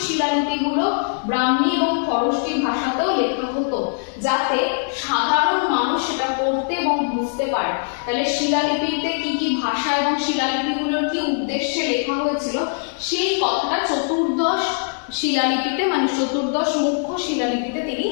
শিলালিপিগুলো ব্রাহ্মী এবং খরষ্টি ভাষাতেও লেখা হতো, যাতে সাধারণ মানুষ সেটা পড়তে এবং বুঝতে পারে। তাহলে শিলালিপিতে কি কি ভাষা এবং শিলালিপিগুলোর কি উদ্দেশ্যে লেখা হয়েছিল সেই কথাটা চতুর্দশ শিলালিপিতে, মানে চতুর্দশ মুখ্য শিলালিপিতে তিনি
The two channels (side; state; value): right; silent; digital silence